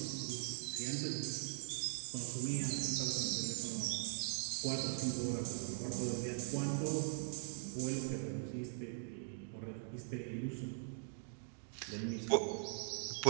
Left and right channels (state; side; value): silent; left; digital silence